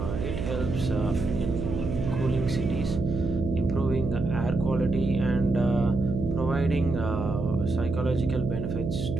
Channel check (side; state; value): right; noise; hum, 4 dB below the sound